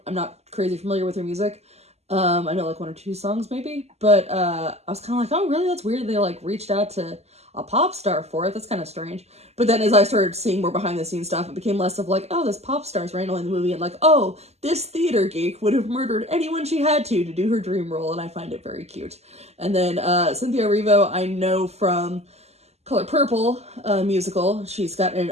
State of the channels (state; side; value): late; left; 0.31 ms